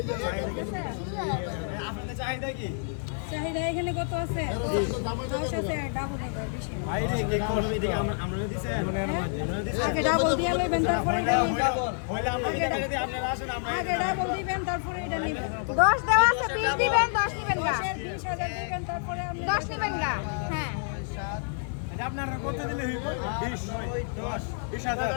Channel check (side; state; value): right; silent; digital silence